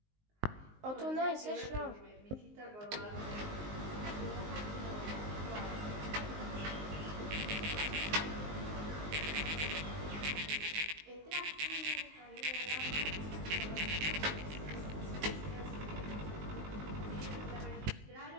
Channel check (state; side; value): late; left; 19 ms